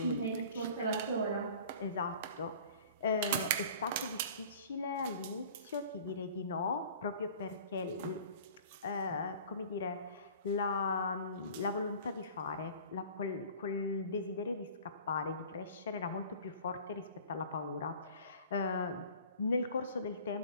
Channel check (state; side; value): inverted; both; correlation -0.45